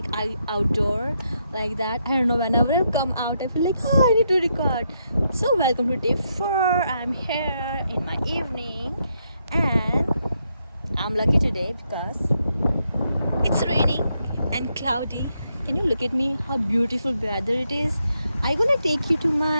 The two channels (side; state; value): both; inverted; correlation -0.79